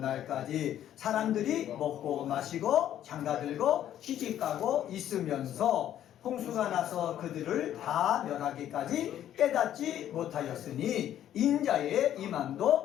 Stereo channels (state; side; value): quieter; right; 11.3 dB